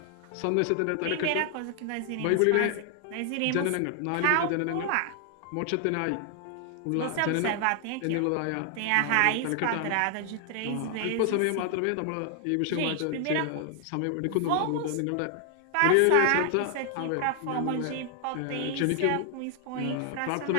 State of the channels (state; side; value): different; both; correlation 0.00